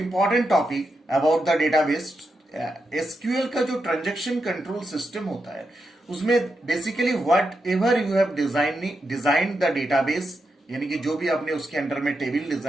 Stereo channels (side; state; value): both; normal; correlation 0.86